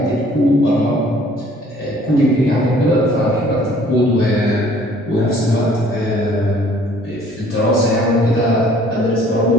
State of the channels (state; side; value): normal; both; correlation 0.56